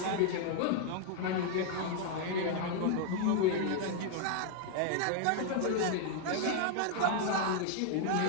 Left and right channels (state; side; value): different; both; correlation 0.00